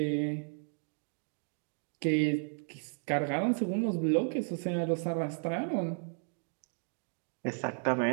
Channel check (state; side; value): silent; left; 55 dB below the other